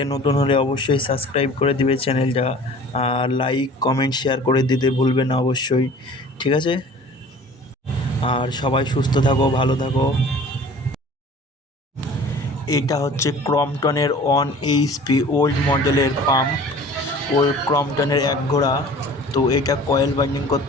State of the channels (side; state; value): both; normal; correlation 0.46